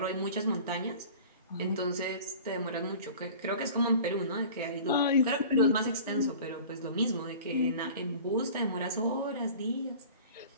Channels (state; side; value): inverted; both; correlation -0.42